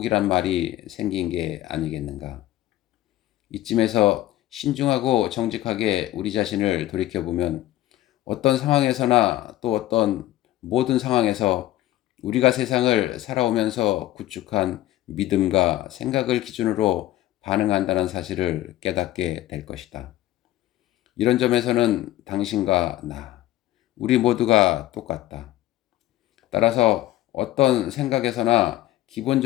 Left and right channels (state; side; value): quieter; right; 14.9 dB